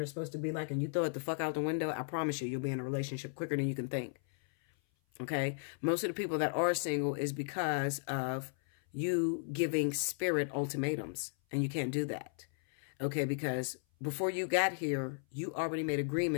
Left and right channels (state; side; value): silent; right; 54 dB below the other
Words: is supposed to be like and you throw it the fuck out the window, I promise you'll be in a relationship quicker than you can think. Okay? Most of the people that are single is because of you giving Spirit ultimatums, and you can't do that. Okay? Because before you got here, you already made